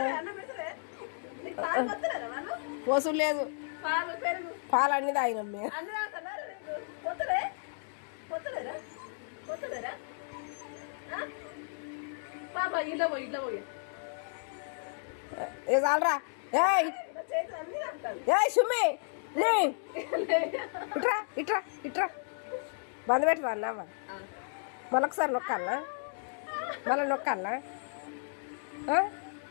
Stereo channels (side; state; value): right; silent; digital silence